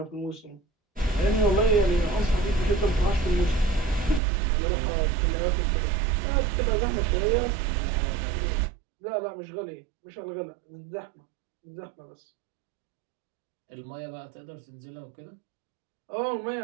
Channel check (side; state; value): left; drops out; at 4.2 s